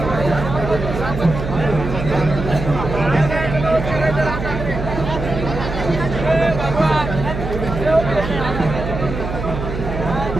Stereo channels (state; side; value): noise; right; hum, 6 dB below the sound